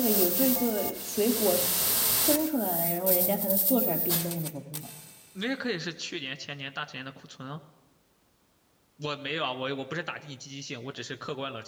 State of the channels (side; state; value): both; identical; correlation 1.00